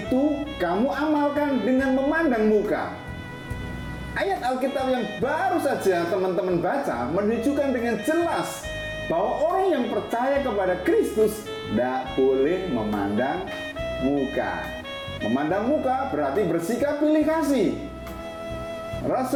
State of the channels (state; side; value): identical; both; correlation 1.00